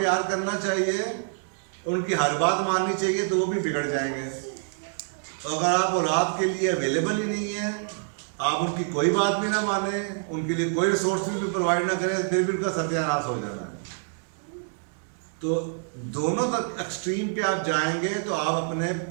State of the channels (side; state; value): left; silent; digital silence